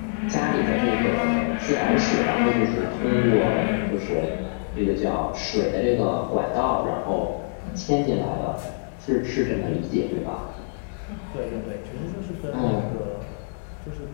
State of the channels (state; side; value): silent; right; 62 dB below the other